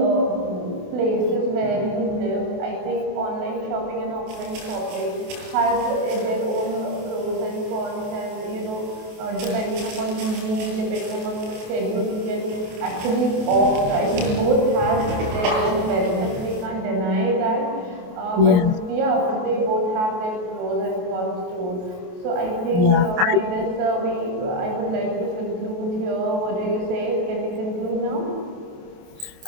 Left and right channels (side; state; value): left; late; 28 ms